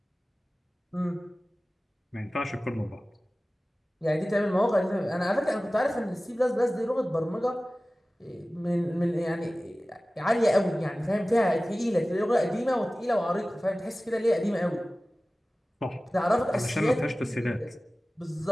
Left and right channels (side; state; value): both; normal; correlation 0.97